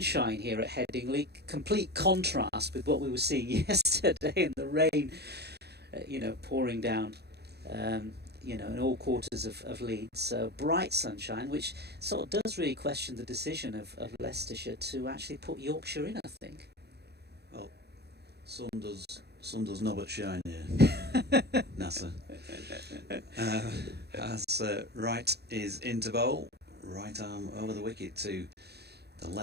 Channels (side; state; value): left; late; 0.48 ms